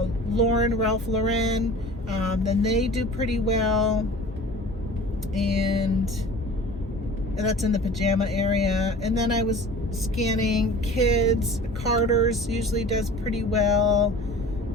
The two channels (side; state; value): both; normal; correlation 0.41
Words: Lauren, then they do pretty well. And that's in the pajama area. And then I was scanning kids. Carter's usually does pretty well.